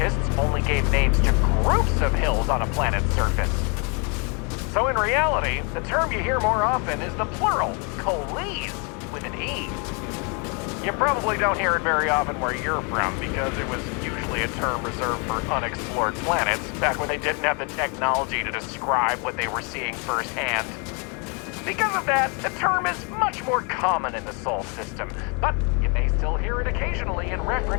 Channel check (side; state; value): right; quieter; 34.4 dB